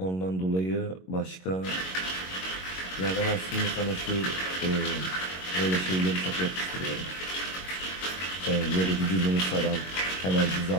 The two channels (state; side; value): late; right; 22 ms